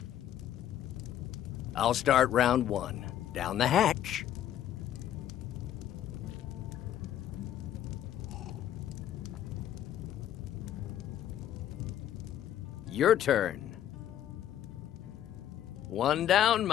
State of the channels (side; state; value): right; quieter; 11.5 dB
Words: I'll start round one. Down the hatch. Your turn. One down,